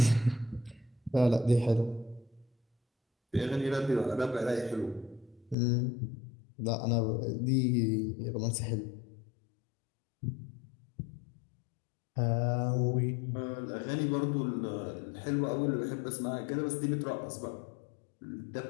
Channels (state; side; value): drops out; right; at 5.6 s